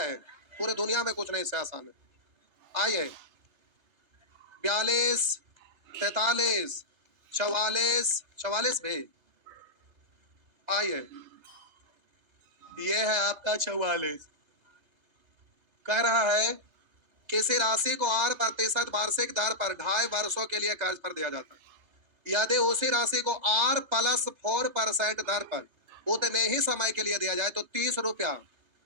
पूरे दुनिया में, कुछ नहीं से आसान है। आइए 42, 43, 44, 44 भी। आइए ये है आपका 44। कह रहा है किसी राशि को 8% वार्षिक दर पर 2.5 वर्षों के लिए कर्ज पर दिया जाता है। यदि उसी राशि को R+4% दर पर उतने ही समय के लिए दिया जाए तो 30 रुपया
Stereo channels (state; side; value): late; left; 3.3 ms